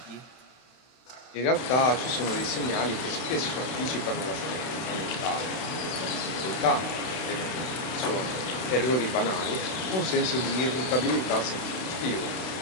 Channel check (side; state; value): right; late; 32 ms